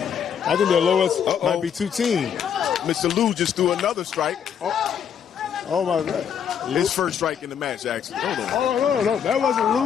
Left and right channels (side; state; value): right; quieter; 8.1 dB